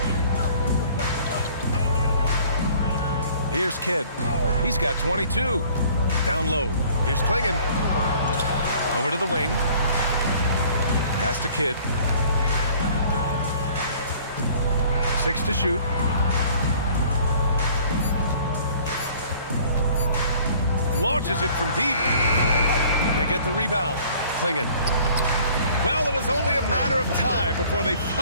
Here's Kidd. He's got 22. Down low. Here's Klingon. Over to the wing. Pass to Kidd. 6 to shoot. Launches it from deep. They get the rebound. Klingon. Well, it was only a matter of time before they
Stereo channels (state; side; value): inverted; both; correlation -0.53